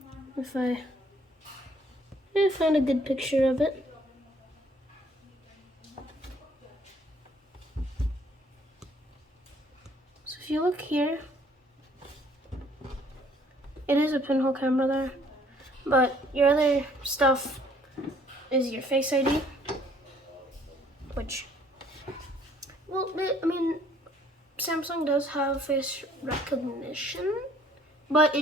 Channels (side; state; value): both; normal; correlation 0.61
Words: if I find a good picture of it. So if you look here, it is a pinhole camera there, but your other stuff is your Face ID, which, well, I mean, Samsung does have face recognition, but